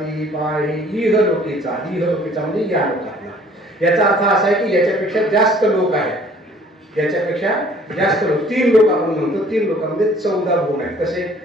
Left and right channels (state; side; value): normal; both; correlation 0.55